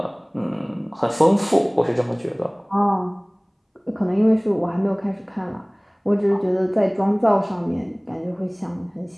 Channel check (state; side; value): identical; both; correlation 1.00